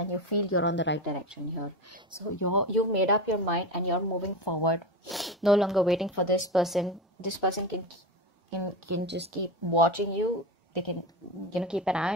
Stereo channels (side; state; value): both; normal; correlation 0.22